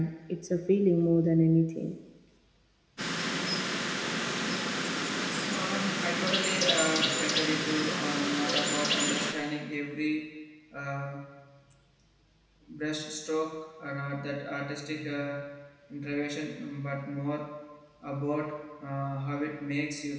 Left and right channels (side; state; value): both; identical; correlation 1.00